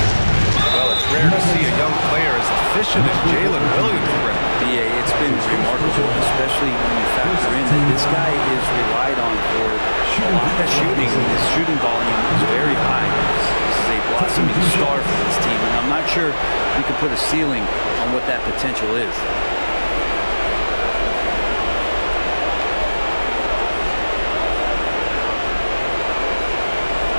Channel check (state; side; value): inverted; both; correlation -1.00